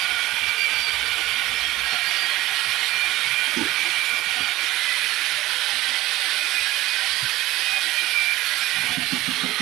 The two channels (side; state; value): left; quieter; 16.9 dB